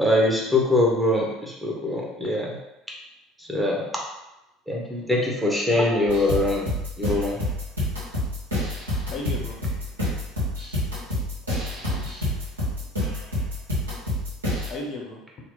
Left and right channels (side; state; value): both; normal; correlation 0.51